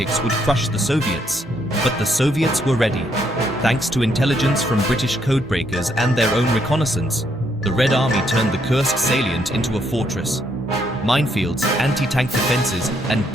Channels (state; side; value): normal; both; correlation 0.73